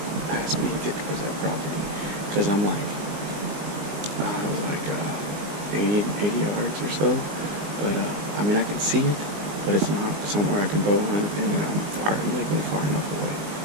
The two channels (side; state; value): left; late; 19 ms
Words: past me and get towards that property. Because I'm like, 80 yards or so, but I mean, I can see it, but it's not somewhere I can bow hunt, and I'm legally far enough away.